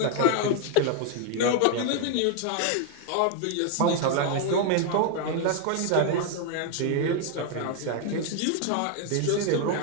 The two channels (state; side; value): different; both; correlation 0.00